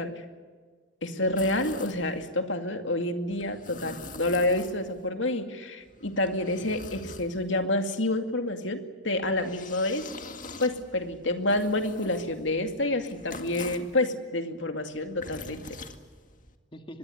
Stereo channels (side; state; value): both; normal; correlation -0.14